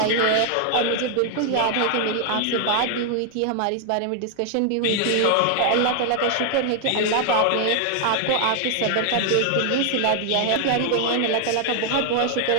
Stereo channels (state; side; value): different; both; correlation 0.00